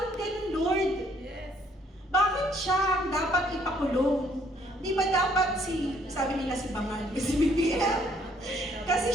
ganun, Lord? Bakit siya ang dapat ipakulong? Di ba dapat sabi nila si Bangal, si BBM?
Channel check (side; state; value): both; normal; correlation 0.65